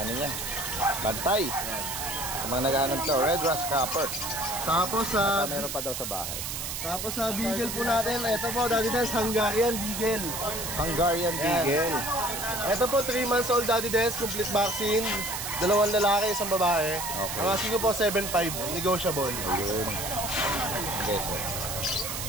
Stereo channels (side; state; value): right; noise; hiss, 5 dB below the sound